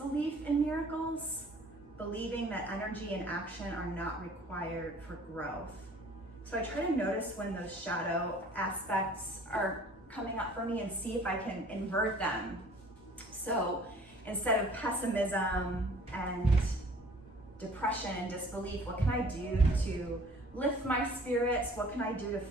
in miracles, believing that energy and action are not required for growth. So I try to notice when those shadow aspects are coming up for me and see if I can invert them. So instead of pessimism and depression and disbelief, what can I do to lift my spirits? What can I do to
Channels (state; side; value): normal; both; correlation 0.51